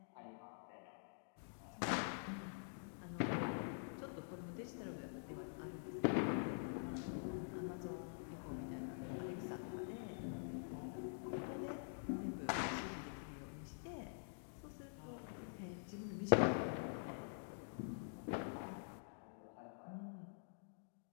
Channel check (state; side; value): silent; right; digital silence